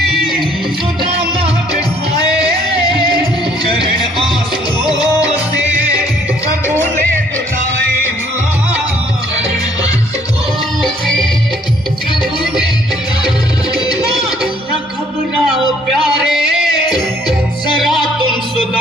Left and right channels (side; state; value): both; normal; correlation 0.63